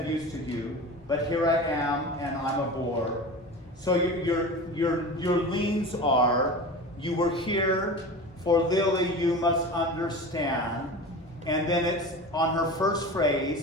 use to you, but here I am, and I'm a bore. So your leans are, you were here for Lily, you must understand. And then it's on her first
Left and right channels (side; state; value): both; normal; correlation 0.32